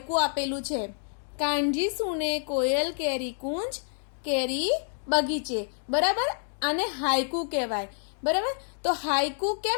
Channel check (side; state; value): right; silent; digital silence